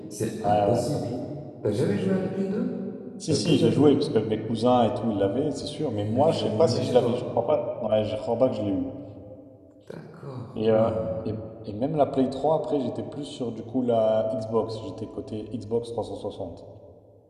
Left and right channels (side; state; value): both; identical; correlation 1.00